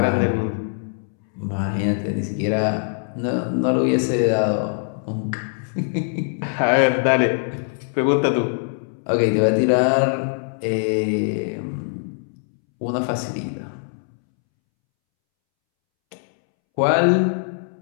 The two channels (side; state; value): right; silent; 64 dB below the other